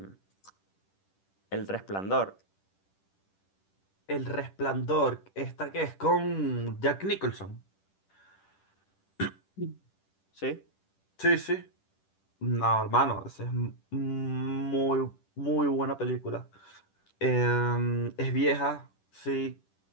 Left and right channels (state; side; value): late; right; 10 ms